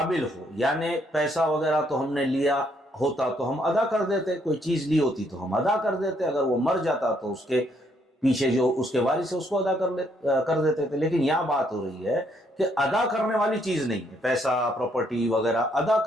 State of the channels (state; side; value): normal; both; correlation 0.71